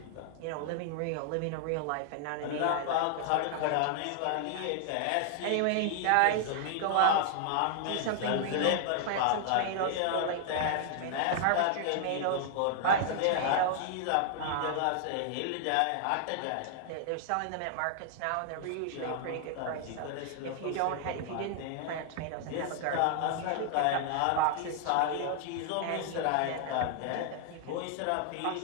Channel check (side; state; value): both; different; correlation 0.00